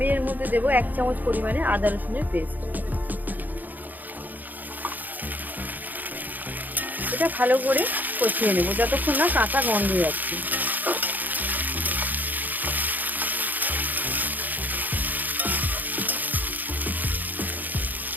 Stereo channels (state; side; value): late; left; 0.084 ms